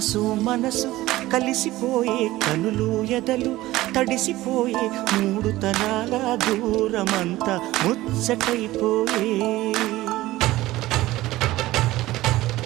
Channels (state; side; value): quieter; left; 17.1 dB